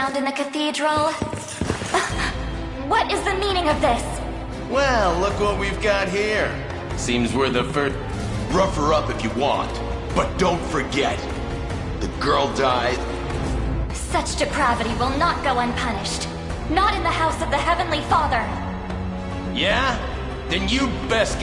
in the cathedral? What is the meaning of this? Well, look what we've got here. Seems we're the first... Rough her up if you want, but don't forget, the girl died. Such depravity will not go unpunished. Not in the house of the Heavenly Father. Yeah? Then you best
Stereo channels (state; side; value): identical; both; correlation 1.00